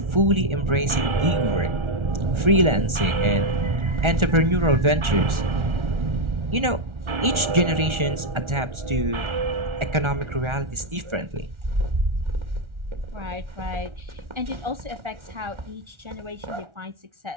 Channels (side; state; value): left; late; 1.4 ms